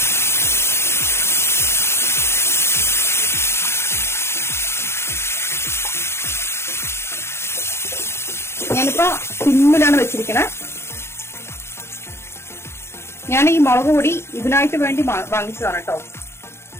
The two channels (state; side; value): late; right; 0.12 ms